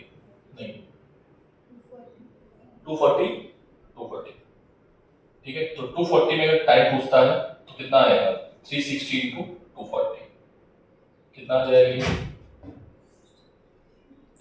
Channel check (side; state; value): both; identical; correlation 1.00